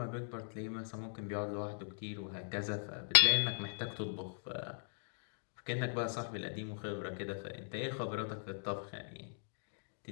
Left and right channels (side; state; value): right; silent; digital silence